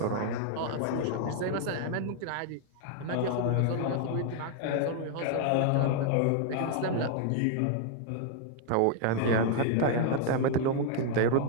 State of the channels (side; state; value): both; different; correlation 0.00